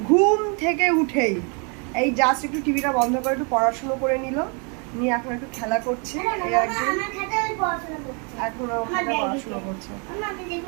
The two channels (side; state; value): left; quieter; 35.9 dB